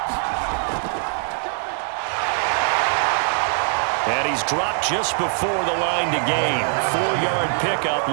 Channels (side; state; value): left; silent; 55 dB below the other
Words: he's dropped just before the line to gain. 4-yard pickup